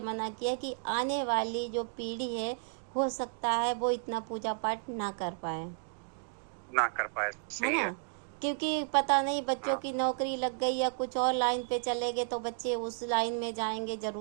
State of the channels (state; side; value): silent; left; digital silence